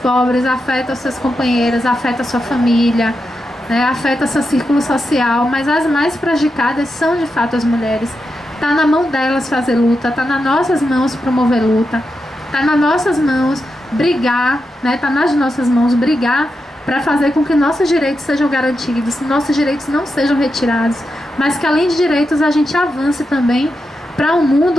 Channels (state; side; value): normal; both; correlation 0.87